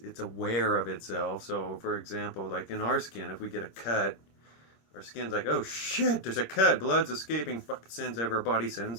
aware of itself. So, for example, like in our skin, if we get a cut, our skin's like, oh shit, there's a cut, blood's escaping. Fucking sends over our body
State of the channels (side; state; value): right; late; 25 ms